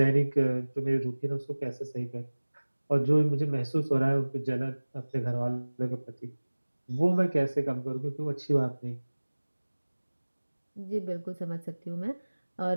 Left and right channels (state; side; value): inverted; both; correlation -1.00